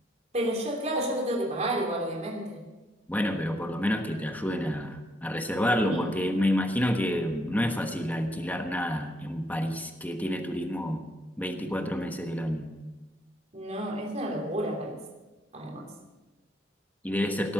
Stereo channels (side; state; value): both; normal; correlation 0.71